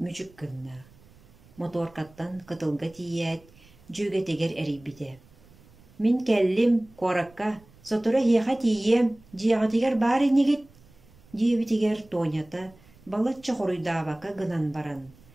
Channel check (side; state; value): right; noise; rumble, 27 dB below the sound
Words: мүчік кынна. Моторкаттан қытылға тиет, жөгетегер әрейбіде. Мен кәллім қоракка, сотыра хеға тием, жиағатегер бар енегет, дебетегер тонята, балатча хоруйдабака гынан баран.